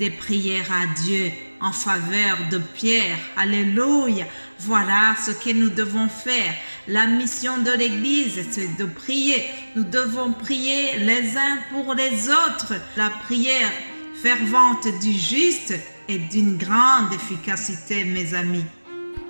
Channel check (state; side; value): inverted; both; correlation -1.00